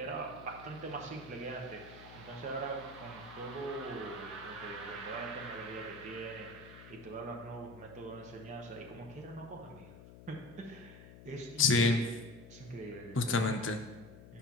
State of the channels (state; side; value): noise; left; hum, 16 dB below the sound